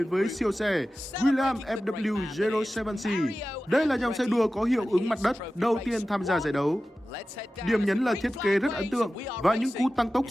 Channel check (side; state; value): both; normal; correlation 0.95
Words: với siêu xe Williams FW 07C. Đây là dòng xe đua có hiệu ứng mặt đất đầu tiên tham gia giải đấu. Điểm nhấn là thiết kế rất ấn tượng và những cú tăng tốc